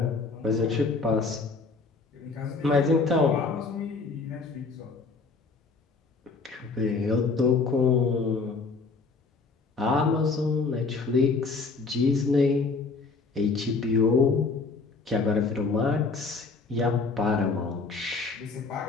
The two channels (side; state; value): right; quieter; 4.2 dB